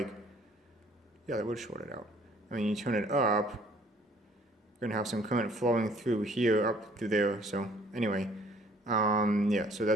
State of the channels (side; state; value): both; normal; correlation 0.58